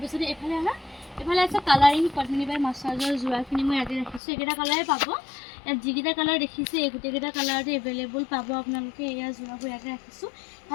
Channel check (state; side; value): drops out; right; at 4.2 s